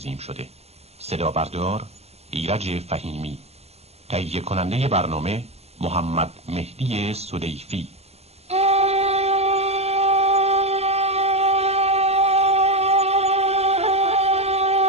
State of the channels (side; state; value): left; late; 0.30 ms